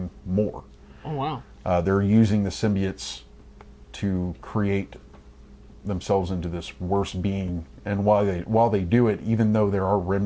more. Oh, wow. They're using the symbiotes to create themselves into this worse being, and while they do it, even though there are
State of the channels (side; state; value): both; identical; correlation 1.00